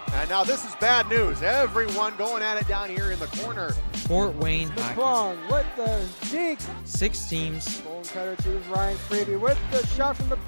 And now this is bad news. Everyone going at it down here in the corner. Fort Wayne Hockey with the deke. 6 teams. Bone cutter to Ryan Freeby with the shot from the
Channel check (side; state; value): both; inverted; correlation -1.00